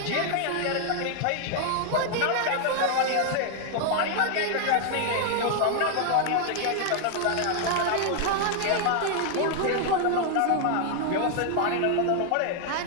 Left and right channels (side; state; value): both; different; correlation 0.00